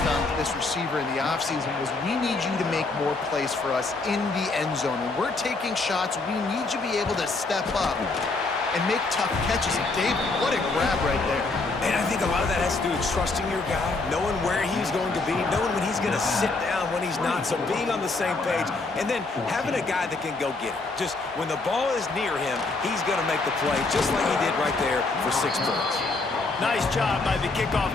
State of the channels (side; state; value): right; quieter; 3.5 dB